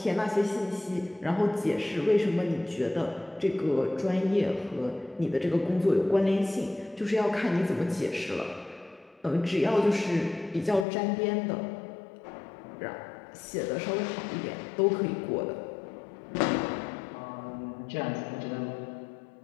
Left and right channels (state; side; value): drops out; right; at 10.9 s